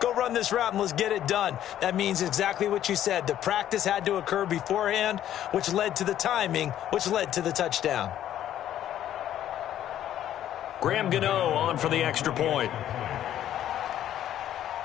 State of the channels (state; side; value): quieter; right; 11.5 dB